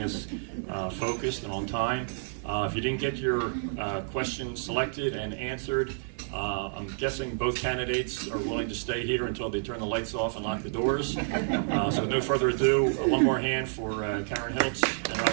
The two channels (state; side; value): silent; left; 58 dB below the other